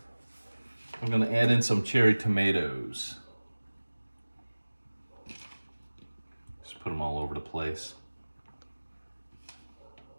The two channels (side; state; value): both; inverted; correlation -1.00